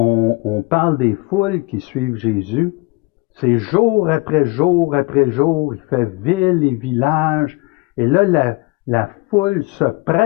parle des foules qui suivent Jésus, c'est jour après jour après jour, il fait ville et village, et là, la foule se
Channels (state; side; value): quieter; right; 25.1 dB